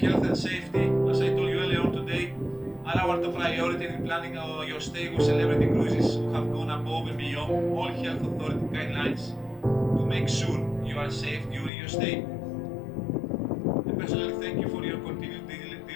and safety, as I told you earlier on today, are our top priority in planning your stay with Celebrity Cruises, who have gone above and beyond all health authority guidelines to make sure you are safe during your stay. I personally thank you for your continued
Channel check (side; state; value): right; drops out; at 11.7 s